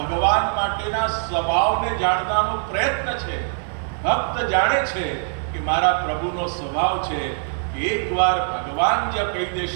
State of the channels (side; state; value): left; silent; 57 dB below the other